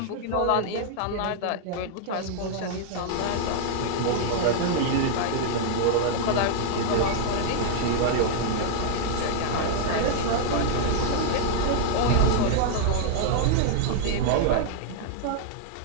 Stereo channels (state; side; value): different; both; correlation -0.01